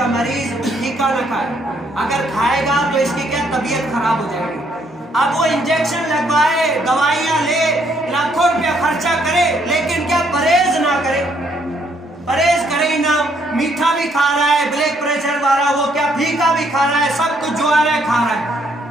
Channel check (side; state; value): both; normal; correlation 0.69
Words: مریض پھیکا نہ کھائے، اگر کھائے گا تو اس کی کیا طبیعت خراب ہو جائے گی. اب وہ انجیکشن لگوائے، دوائیاں لے، لاکھوں روپیہ خرچہ کرے، لیکن کیا پرہیز نہ کرے، پرہیز کرے ہی نہ، میٹھا بھی کھا رہا ہے، بلڈ پریشر والا وہ کیا پھیکا بھی کھا رہا ہے، سب کچھ جو آ رہا ہے کھا رہا